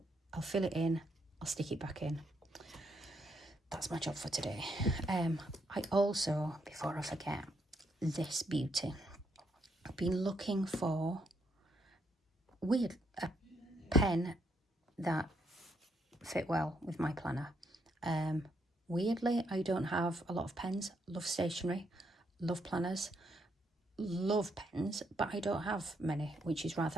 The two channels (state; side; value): normal; both; correlation 0.75